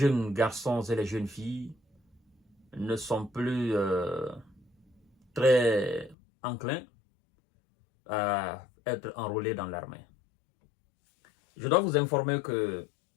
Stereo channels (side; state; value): right; drops out; at 6.2 s